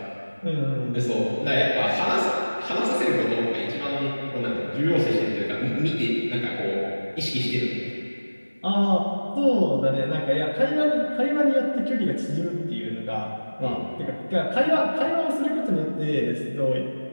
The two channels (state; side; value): inverted; both; correlation -1.00